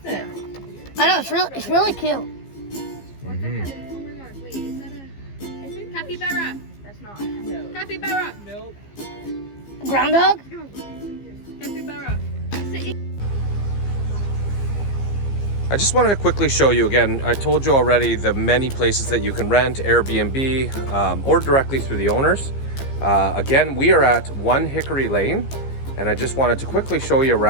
it? I know, it's really cute. Mm-hmm. Capybara. That's not. No. Capybara. Nope. Groundhog? Capybara. I just wanted to quickly show you again. I told you already the many places that you can rent, Airbnb, or directly through the owners. Again, we are at 1 Hickory Lane, and I just wanted to quickly show you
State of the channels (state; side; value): late; right; 15 ms